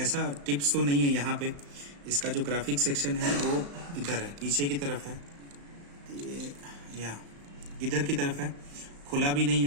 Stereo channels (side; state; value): left; late; 35 ms